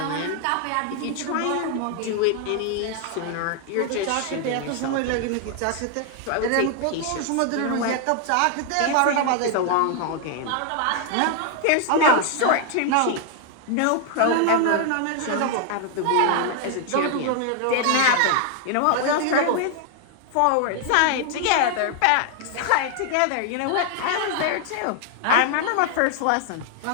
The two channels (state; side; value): different; both; correlation 0.00